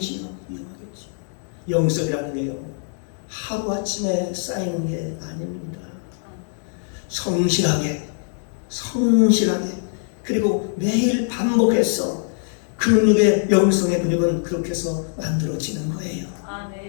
영성이라는 게요, 하루아침에 쌓이는 게 아닙니다. 성실하게 그리고 매일 반복해서 근육의 영성의 근육은 그렇게 해서 만들어지는 거예요.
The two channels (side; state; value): right; silent; digital silence